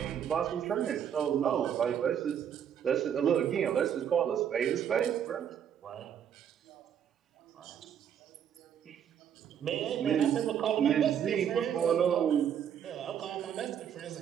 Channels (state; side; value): quieter; left; 8.8 dB